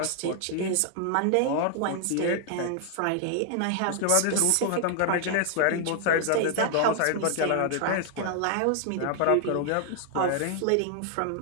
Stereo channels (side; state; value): both; different; correlation 0.00